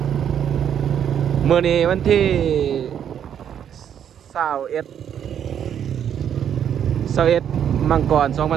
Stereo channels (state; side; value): quieter; left; 9.1 dB